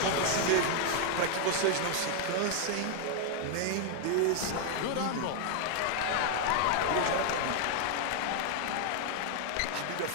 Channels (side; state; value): both; different; correlation 0.00